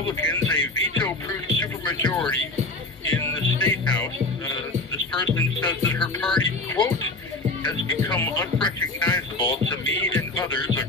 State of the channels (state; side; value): quieter; right; 3.1 dB